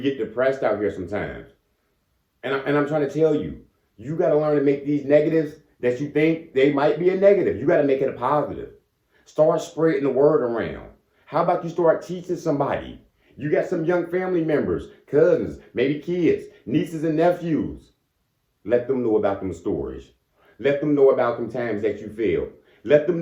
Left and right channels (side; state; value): both; identical; correlation 1.00